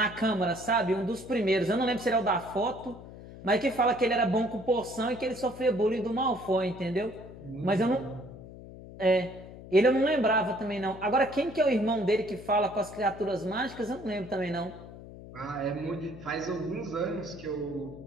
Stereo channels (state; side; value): noise; left; hum, 15 dB below the sound